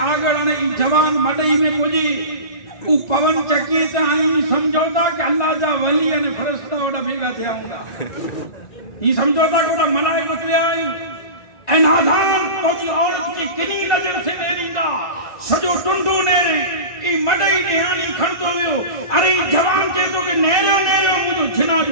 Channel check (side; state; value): right; late; 1.9 ms